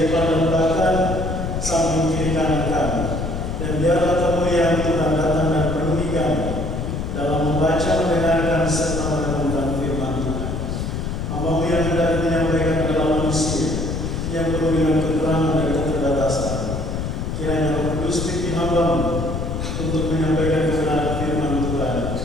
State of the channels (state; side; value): noise; left; rumble, 3 dB below the sound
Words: depan dan belakang, samping kiri kanan kami. Dan biarlah kemuliaan Tuhan datang dan penuhi kami dalam membaca, mendengarkan, serta merenungkan firman Tuhan. Hamba-Mu yang hendak menyampaikan adalah manusia yang penuh dengan kekurangan dan keterbatasan. Kiranya Roh Kudus pimpin hamba-Mu untuk menyampaikan kebenaran firman Tuhan